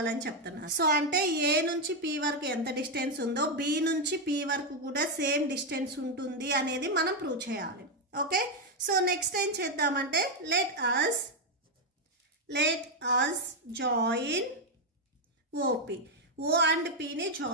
అని చెప్తున్నారు. సో అంటే ఏ నుంచి పి వరకు ఎంత డిస్టెన్స్ ఉందో బి నుంచి పి వరకు కూడా సేమ్ డిస్టెన్స్ ఉంటుంది అనేది మనం ప్రూవ్ చేయాలి. ఓకే, సో నెక్స్ట్ ఏం చేద్దామంటే let us join O P. O and పిని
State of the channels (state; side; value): normal; both; correlation 0.04